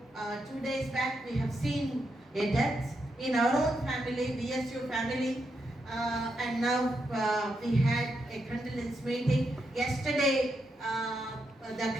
2 days back we have seen a death in our own family, BSU family. And now we had a condolence meeting. Yesterday, the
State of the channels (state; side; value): normal; both; correlation 0.83